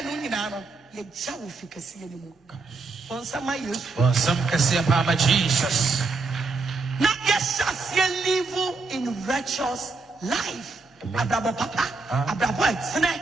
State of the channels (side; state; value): left; quieter; 3.9 dB